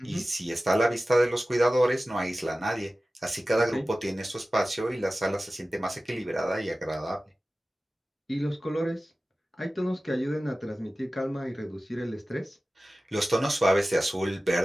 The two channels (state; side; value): normal; both; correlation 0.96